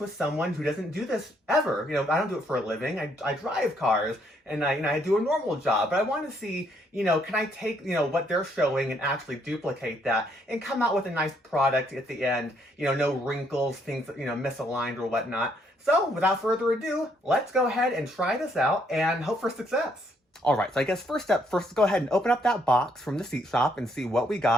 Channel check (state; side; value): normal; both; correlation 0.70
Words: someone who doesn't do this ever. I don't do it for a living. I drive cars and I do a normal job, but I want to see, can I take, what they're showing and actually duplicate that and come out with a nice product at the end, no wrinkles, things, misaligned or whatnot. So without further ado, let's go ahead and try this out and hope for success. All right, so I guess first, let's go ahead and open up that box from the seat shop and see what we